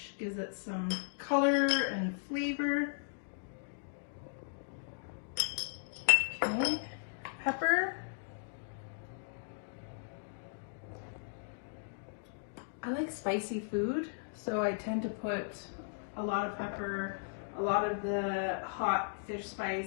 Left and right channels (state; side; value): silent; right; digital silence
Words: Gives it some color and flavor. Okay, pepper. I like spicy food, so I tend to put a lot of pepper, a lot of the hot fish